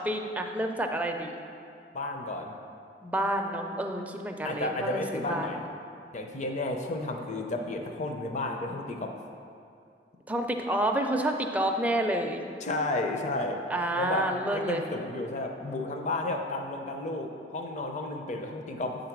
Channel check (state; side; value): normal; both; correlation 0.38